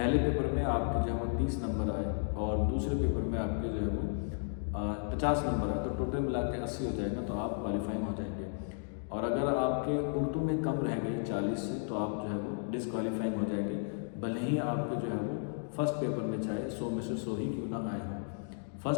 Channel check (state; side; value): silent; right; digital silence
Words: पेपर में आपके जो है वो 30 नंबर आए और दूसरे पेपर में आपके जो है वो 50 नंबर आए, तो टोटल मिला के 80 हो जाएगा, तो आप क्वालिफाइंग हो जाएंगे। और अगर आपके उर्दू में कम रह गए 40 से, तो आप जो है वो डिसक्वालीफाइंग हो जाएंगे, भले ही आपके जो है वो फर्स्ट पेपर में चाहे 100 में से 100 ही क्यों ना आए हों।